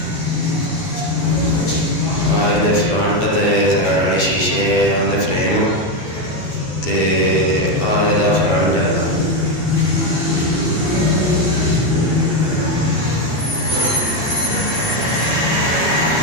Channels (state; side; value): late; right; 12 ms